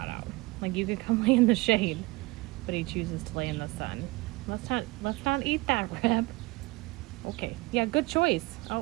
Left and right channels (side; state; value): left; quieter; 23.3 dB